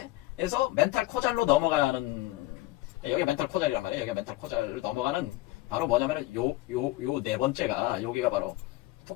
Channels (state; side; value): quieter; right; 18.1 dB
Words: 멘탈 코잘로 넘어가는, 여기 멘탈 코잘이란 말이에요. 여기 멘탈 코잘을 넘어가는, 바로 뭐냐면은 요 4번째가, 여기가 바로